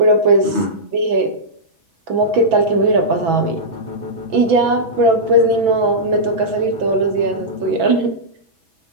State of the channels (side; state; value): left; late; 6.1 ms